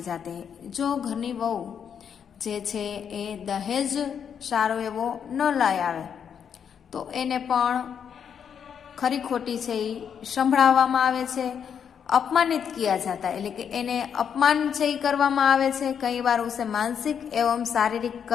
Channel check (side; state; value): right; quieter; 7.8 dB